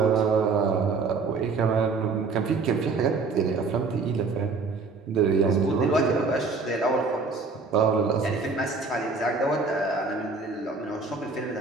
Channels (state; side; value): quieter; left; 4.3 dB